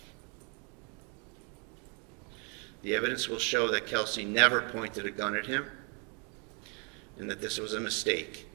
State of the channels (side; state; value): left; quieter; 36.1 dB